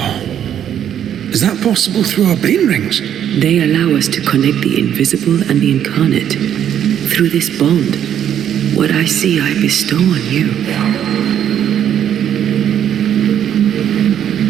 Is that possible through our bane rings? They allow us to connect the invisible and the incarnate. Through this bond, what I see I bestow on you.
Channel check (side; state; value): left; quieter; 9.7 dB